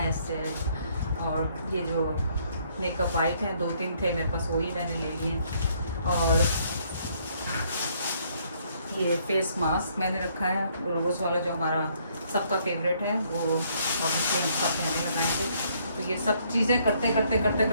और ये जो मेकअप वाइट है, 2-3 थे मेरे पास, वही मैंने ले लिए। और ये फेस मास्क मैंने रखा है, रोज़ वाला जो हमारा सबका फेवरेट है, वो ऑब्वियसली हम सब पहने लगाएंगे। तो ये सब चीज़ें करते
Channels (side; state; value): both; inverted; correlation -0.67